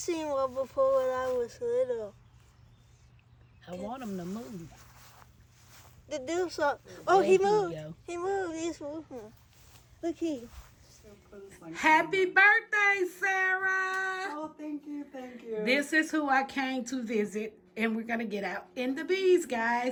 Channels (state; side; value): identical; both; correlation 1.00